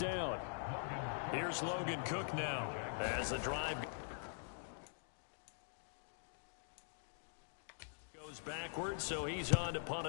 Here's Logan Cook now as the drive goes backwards, so he's on to punt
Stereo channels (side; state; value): right; silent; digital silence